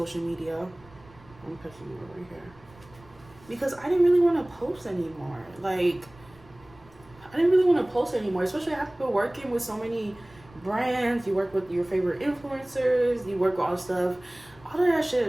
media. I'm pushing you over here because I didn't really want to post anymore. Like, I didn't really want to post anymore, especially after working with so many brands. You work with your favorite influencers, you work with all stuff. All of that shit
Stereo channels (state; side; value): noise; right; rumble, 25 dB below the sound